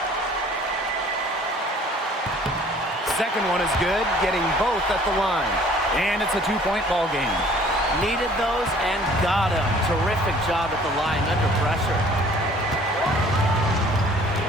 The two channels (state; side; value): normal; both; correlation 0.54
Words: Second one is good, getting both at the line. And it's a 2-point ball game. Needed those and got them. Terrific job at the line under pressure.